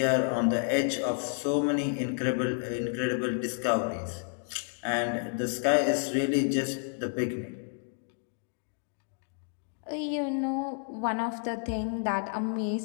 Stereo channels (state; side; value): silent; right; 58 dB below the other